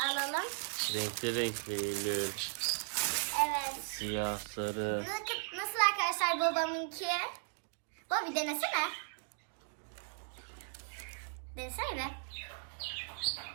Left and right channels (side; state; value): left; silent; digital silence